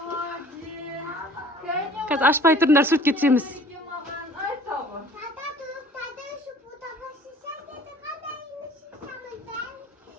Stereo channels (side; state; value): both; normal; correlation 0.50